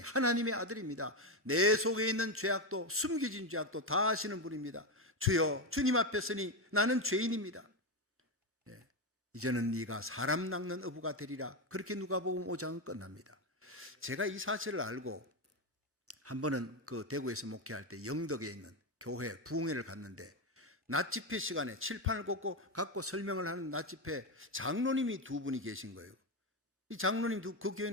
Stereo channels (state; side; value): normal; both; correlation 0.10